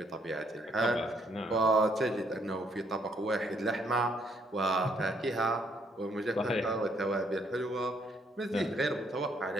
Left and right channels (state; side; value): normal; both; correlation 0.69